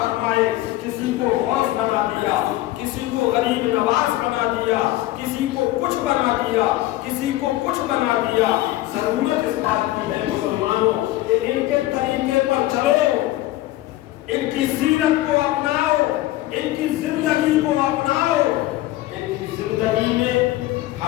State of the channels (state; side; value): quieter; right; 16.4 dB